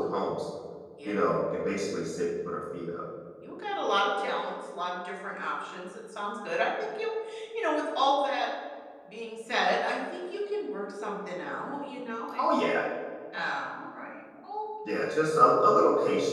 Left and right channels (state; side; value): identical; both; correlation 1.00